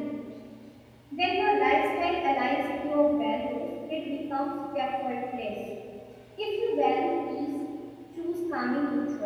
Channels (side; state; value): both; identical; correlation 1.00